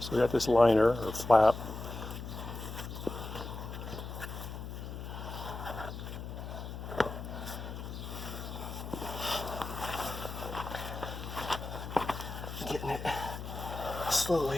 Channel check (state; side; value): noise; left; hum, 8 dB below the sound